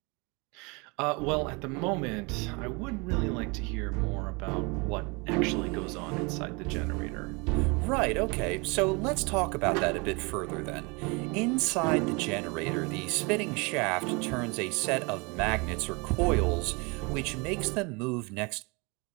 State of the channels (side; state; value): left; quieter; 29.0 dB